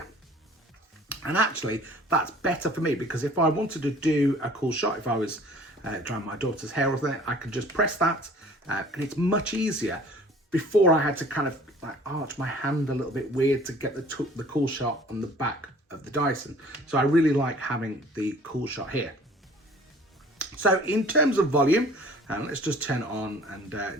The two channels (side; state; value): both; normal; correlation 0.50